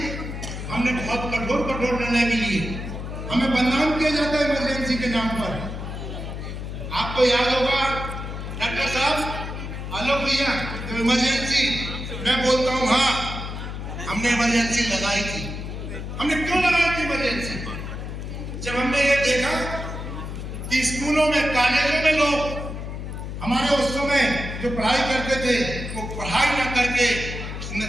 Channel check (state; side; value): noise; left; hum, 7 dB below the sound